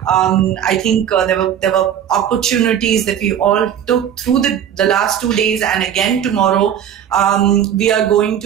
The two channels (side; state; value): left; quieter; 9.5 dB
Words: I think there were opportunities that we all took through the last 2 days, and again tomorrow. We are going